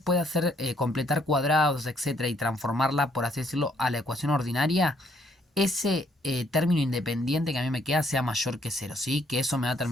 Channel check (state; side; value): normal; both; correlation 0.68